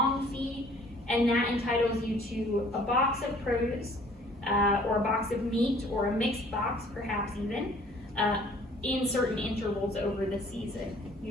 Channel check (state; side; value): normal; both; correlation 0.55